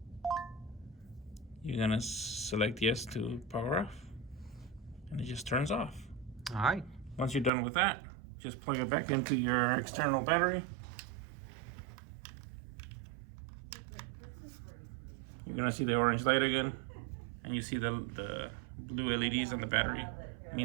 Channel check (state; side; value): drops out; left; at 7.5 s